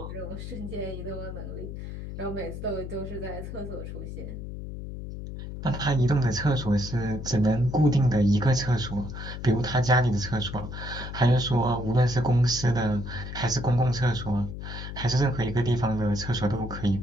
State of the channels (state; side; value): noise; left; hum, 8 dB below the sound